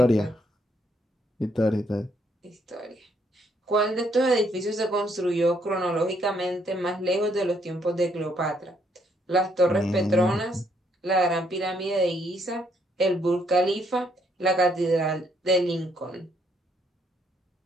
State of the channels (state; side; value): normal; both; correlation 0.71